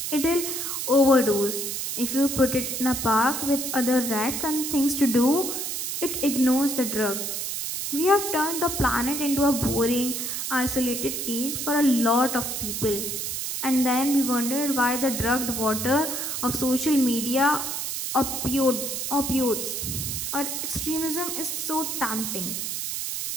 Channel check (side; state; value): right; noise; hiss, 3 dB below the sound